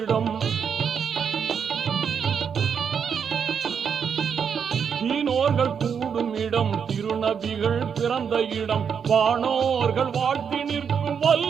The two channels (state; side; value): quieter; left; 7.0 dB